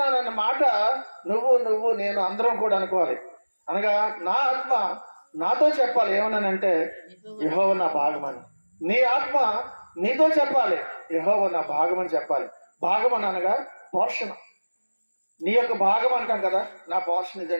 మాట నువ్వు నేను అందరం కూడా అనుకోవాలి. అనగా నా ఆత్మ నాతో చెప్పాలి ఏమన్నానంటే, యెహోవా నా భాగమని. నీ ఆత్మ నీతో చెప్పాలి, యెహోవా నా భాగమని చెప్పాలి. భాగమని అనగా పోషణ. నీ యొక్క భాగం అంటాం కదా, నా పోర్షన్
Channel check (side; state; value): both; inverted; correlation -1.00